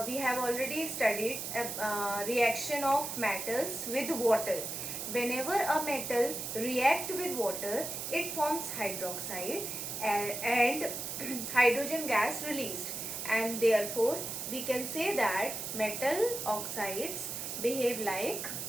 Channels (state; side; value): noise; right; hiss, 5 dB below the sound